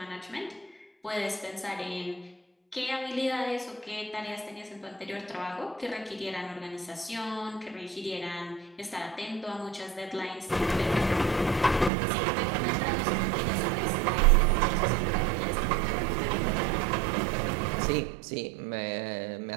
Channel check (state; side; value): drops out; left; at 11.9 s